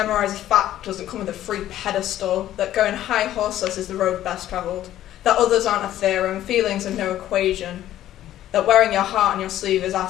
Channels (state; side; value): quieter; right; 12.8 dB